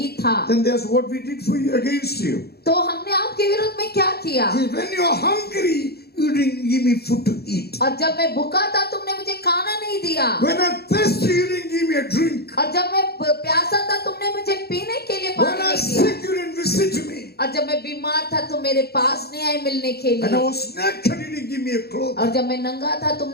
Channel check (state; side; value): late; right; 0.46 ms